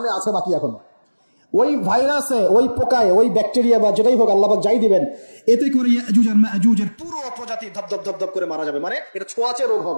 আছে বাকি এখনো। ওই ভাইরাসে, ওই পোকায়, ওই ব্যাকটেরিয়া বা যেটাই হোক আল্লাহ পাক যাই দিবেন, এতে করে ইয়াজুজ আর মাজুজের পুরো প্রজাতি ধপ করে মারা যাবে। মানে এটা ছোঁয়াচে রোগ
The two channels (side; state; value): both; inverted; correlation -1.00